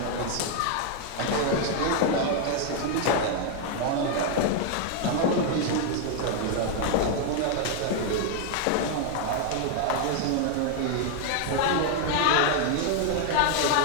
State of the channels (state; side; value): different; both; correlation 0.00